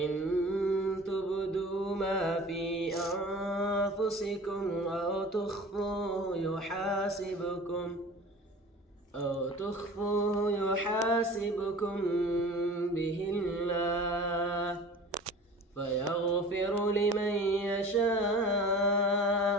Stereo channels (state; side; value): normal; both; correlation 0.41